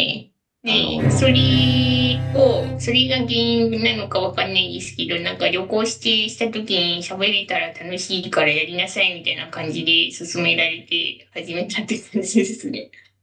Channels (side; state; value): both; identical; correlation 1.00